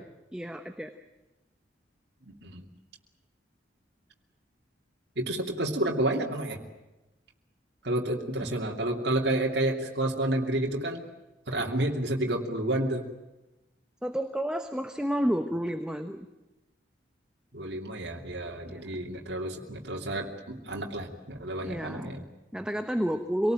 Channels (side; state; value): both; normal; correlation 0.48